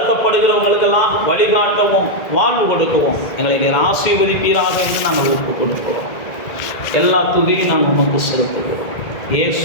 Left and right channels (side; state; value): right; late; 1.9 ms